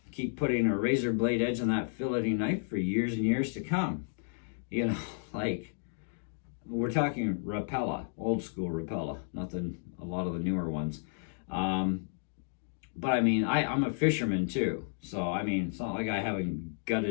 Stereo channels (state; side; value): silent; right; digital silence